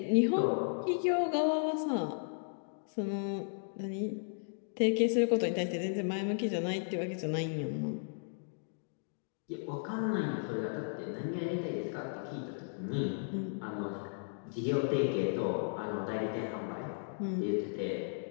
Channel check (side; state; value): right; silent; digital silence